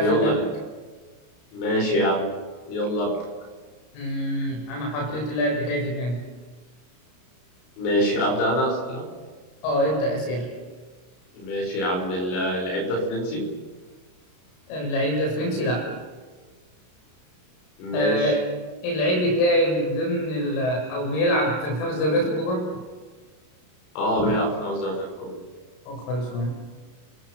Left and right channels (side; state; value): right; late; 33 ms